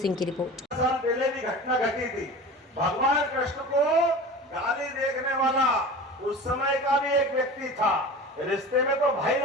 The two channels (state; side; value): normal; both; correlation 0.35